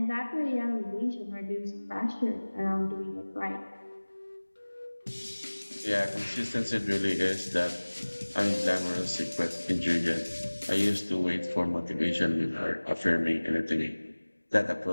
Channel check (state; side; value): inverted; both; correlation -1.00